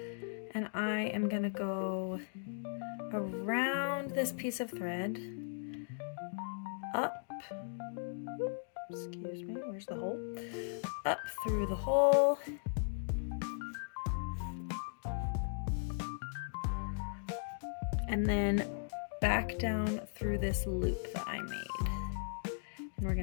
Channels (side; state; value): right; silent; digital silence